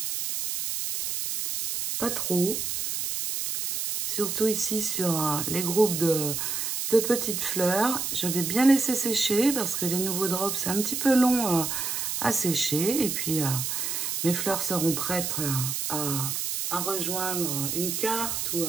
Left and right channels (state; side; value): noise; right; hiss, 2 dB below the sound